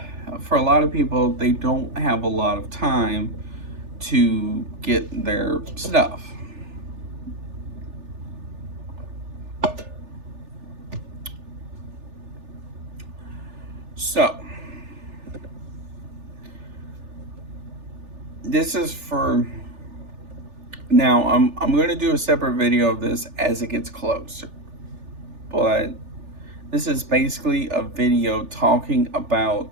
for a lot of people, they don't have a lot of time to get their stuff. So, this is for now. I'm going to do a separate video of this as it gets closer, but this is basically a video talking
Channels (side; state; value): left; late; 3.4 ms